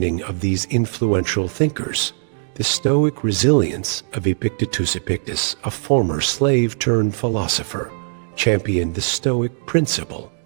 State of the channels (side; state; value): left; silent; digital silence